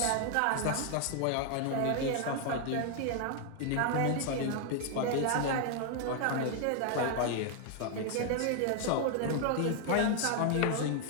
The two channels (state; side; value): different; both; correlation 0.00